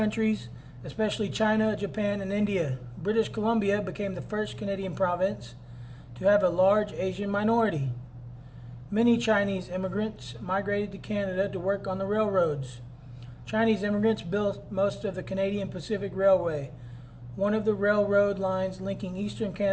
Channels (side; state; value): both; identical; correlation 1.00